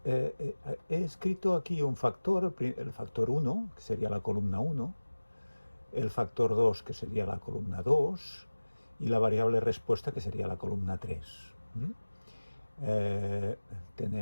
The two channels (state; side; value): inverted; both; correlation -1.00